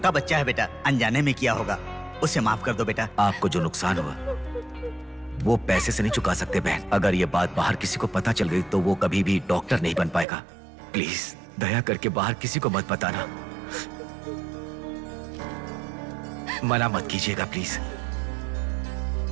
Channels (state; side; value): drops out; left; at 10.2 s